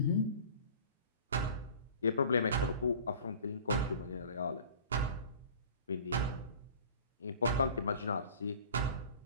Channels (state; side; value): inverted; both; correlation -0.45